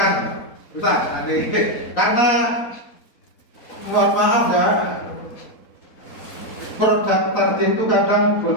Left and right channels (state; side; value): late; right; 3.9 ms